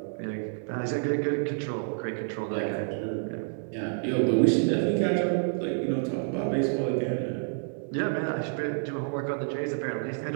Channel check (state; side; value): silent; left; digital silence